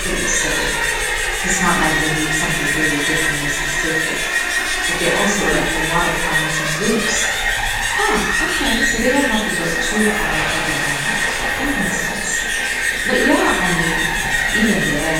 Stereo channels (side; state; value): both; identical; correlation 1.00